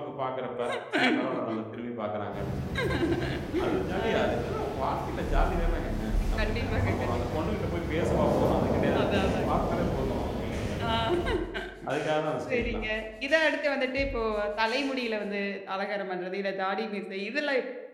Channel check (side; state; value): both; identical; correlation 1.00